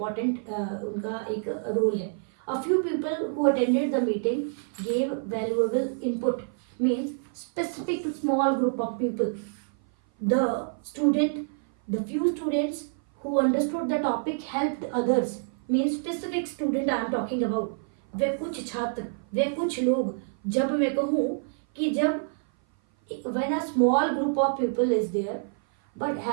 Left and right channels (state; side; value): silent; left; 56 dB below the other